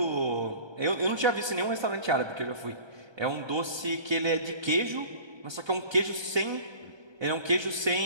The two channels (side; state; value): left; late; 1.3 ms